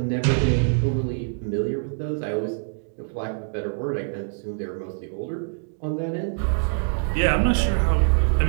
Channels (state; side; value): silent; left; digital silence